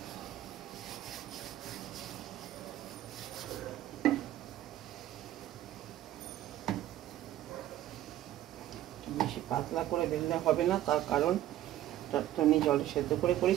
বেশি পাতলা করে বেললে হবে না, তার কারণ আমি জলে সেদ্ধ করে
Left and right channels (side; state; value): left; quieter; 13.4 dB